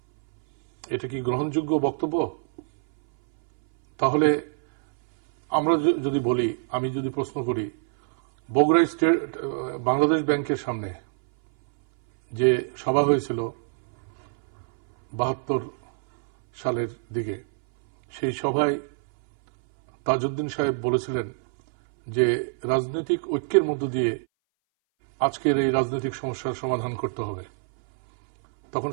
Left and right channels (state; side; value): silent; left; 60 dB below the other